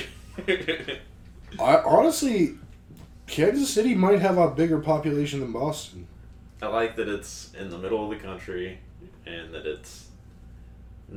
Honestly, Kansas City might have a bigger population than Boston. I like that it's in the middle of the country and that it's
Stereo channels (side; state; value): both; identical; correlation 1.00